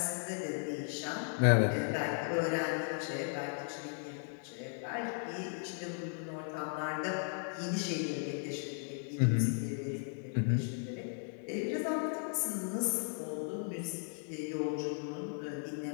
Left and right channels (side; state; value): right; silent; 54 dB below the other